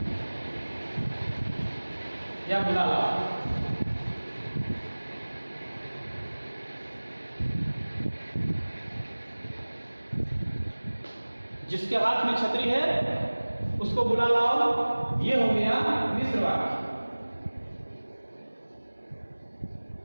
या बुला लाओ। जिसके हाथ में छतरी है उसको बुला लाओ, ये हो गया मिश्र वाक्य।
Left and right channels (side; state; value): both; inverted; correlation -1.00